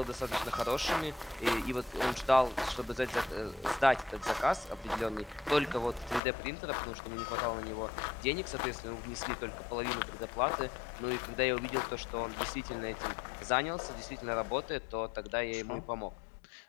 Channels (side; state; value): right; drops out; at 6.2 s